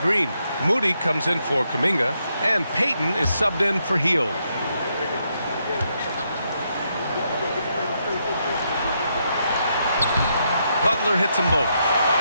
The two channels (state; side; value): inverted; both; correlation -0.79